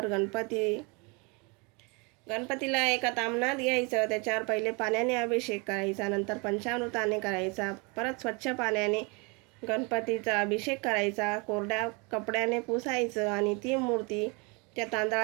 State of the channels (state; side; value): quieter; left; 30.4 dB